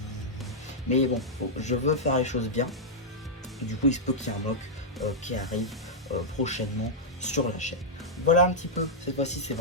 Mais bon, je veux faire les choses bien. Et du coup, il se peut qu'il y ait un mock qui arrive prochainement sur la chaîne. Voilà un petit peu, cette fois-ci c'est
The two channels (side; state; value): both; normal; correlation -0.07